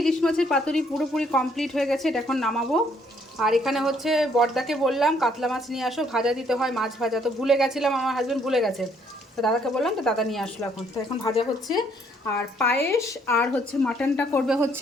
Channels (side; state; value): both; normal; correlation 0.67